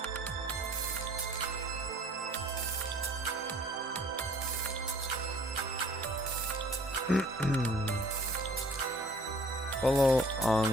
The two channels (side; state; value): both; normal; correlation 0.54